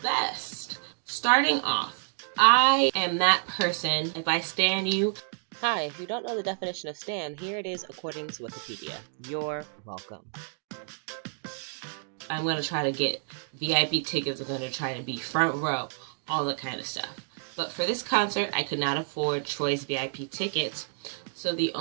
best. Starting off, I am that person, if I stan you. Hi, if you don't know the definition of stan, here it is according to Wikipedia. You're welcome. I'm going to try to get VIP tickets. I'm going to try to be front row, all that kind of stuff. But for this concert, I could not afford Troye's VIP tickets, so the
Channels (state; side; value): silent; left; 59 dB below the other